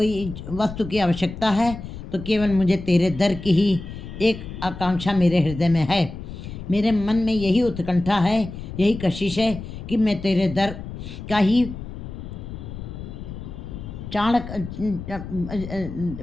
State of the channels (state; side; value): noise; left; rumble, 10 dB below the sound